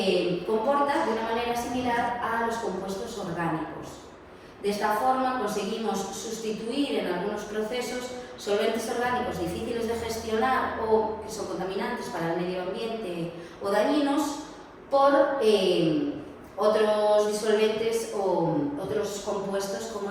comporta de una manera similar a los compuestos orgánicos. De esta forma conseguimos sustituir en algunos procesos solventes orgánicos difíciles de gestionar o que son contaminantes para el medio ambiente o dañinos por otros disolventes o otros compuestos como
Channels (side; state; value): both; identical; correlation 1.00